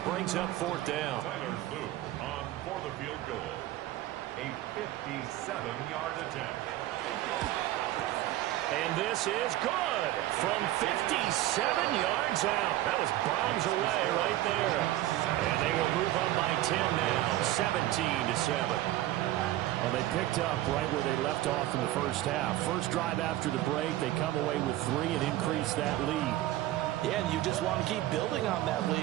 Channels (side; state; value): left; quieter; 15.1 dB